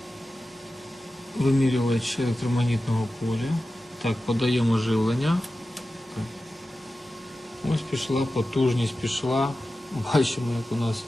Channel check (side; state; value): both; normal; correlation 0.93